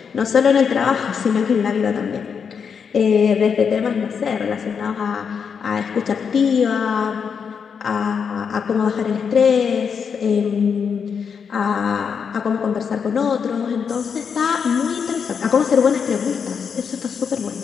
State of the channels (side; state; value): right; quieter; 6.5 dB